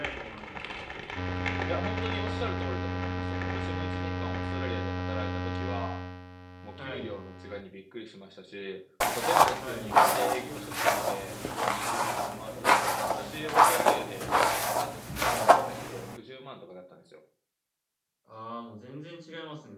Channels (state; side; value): identical; both; correlation 1.00